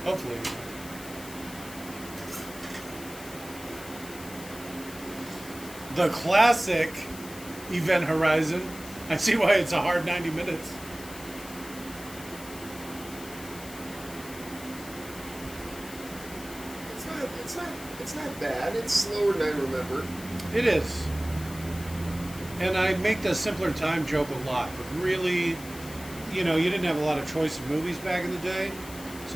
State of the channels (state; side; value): noise; left; hiss, 15 dB below the sound